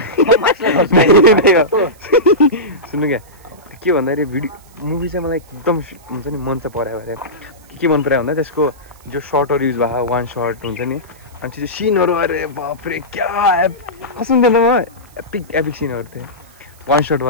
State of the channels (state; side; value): noise; right; hiss, 28 dB below the sound